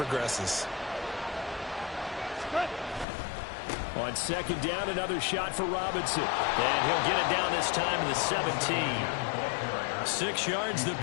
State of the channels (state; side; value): drops out; right; at 3.1 s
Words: On 2nd down, another shot for Robinson. And he'll get it down this time to the 17. 6 yards the